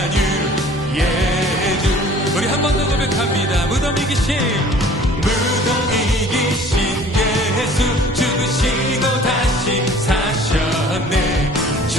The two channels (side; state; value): both; normal; correlation 0.50